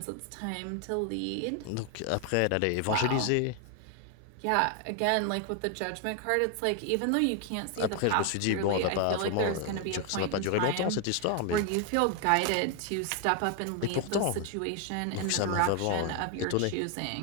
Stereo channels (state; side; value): different; both; correlation 0.00